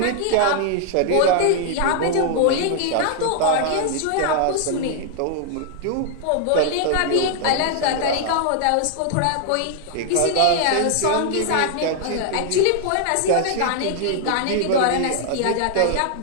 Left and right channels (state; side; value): different; both; correlation 0.00